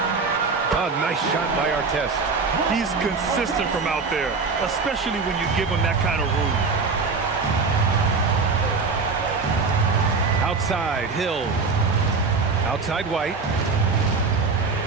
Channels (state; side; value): quieter; left; 4.5 dB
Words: nice shot by Artest. He's consistent from out there, especially when you give him that kind of room. Outside, Hill. Outside, White.